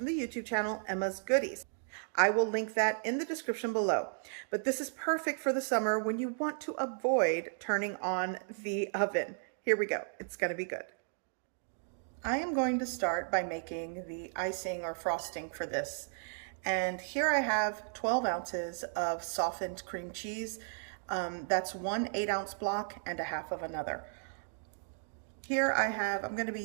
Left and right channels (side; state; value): left; silent; digital silence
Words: the YouTube channel, Emma's Goodies. I will link that in the description below. But this is perfect for the summer when you want to avoid turning on the oven. Here we go, it's gonna be good. I am going to start by making the icing or frosting for this. And here I have 12 ounces of softened cream cheese. That's one 8-ounce block and a half of another. Here I'm going to be